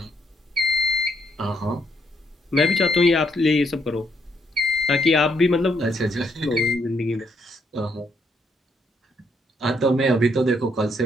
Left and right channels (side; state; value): both; normal; correlation 0.73